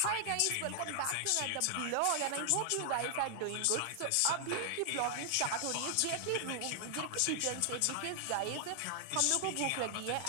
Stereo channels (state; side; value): different; both; correlation 0.00